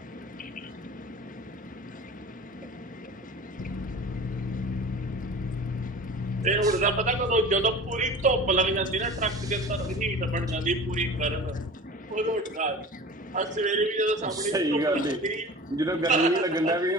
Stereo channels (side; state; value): both; normal; correlation 0.38